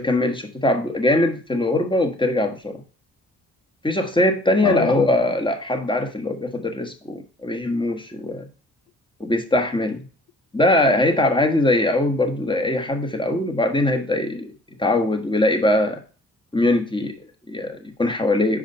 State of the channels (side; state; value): both; normal; correlation 0.54